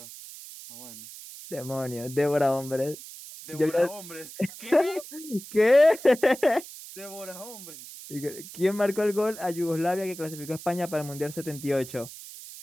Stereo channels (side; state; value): right; noise; hiss, 14 dB below the sound